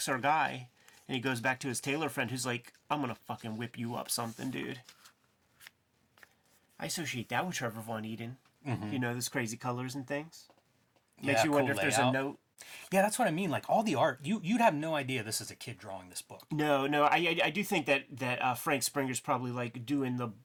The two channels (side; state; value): both; identical; correlation 1.00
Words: our guy, and he goes back to his tailor friend, who's like, "I'm gonna fucking whip you up, something, dude." I associate that with Trevor Von Eeden. Mm-hmm. You know, those crazy colors and things. Makes you wonder if there's a note. Yeah, that's what I mean. Like all the art, you'd have no idea this is a kid drawing this book. No, I do think that Frank Springer's probably like doing